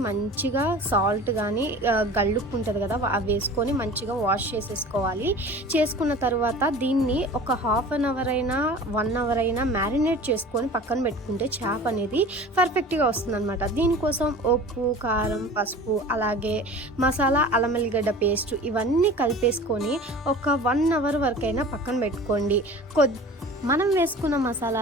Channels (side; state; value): both; normal; correlation 0.40